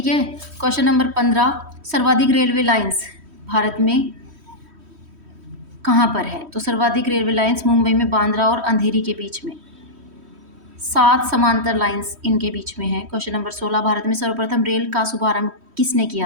है। क्वेश्चन नंबर 15, सर्वाधिक रेलवे लाइंस भारत में कहाँ पर है? तो सर्वाधिक रेलवे लाइंस मुंबई में बांद्रा और अंधेरी के बीच में। 7 समांतर लाइंस इनके बीच में है। क्वेश्चन नंबर 16, भारत में सर्वप्रथम रेल का शुभारंभ किसने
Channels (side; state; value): left; late; 3.1 ms